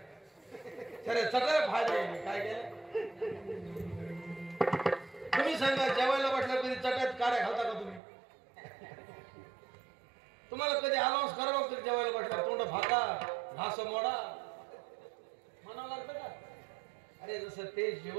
खरे सगळं फायदा आहे. काय केलं तुम्ही सांगा, जेवायला बसल्या कधी चटात काड्या घालता का तुम्ही? तुम्हाला कधी अनाउन्स करावं लागतं जेवायला बसल्या तोंड फाका घास मोडा म्हणावं लागतं का? अरे जसं ते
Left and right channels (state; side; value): drops out; left; at 8.0 s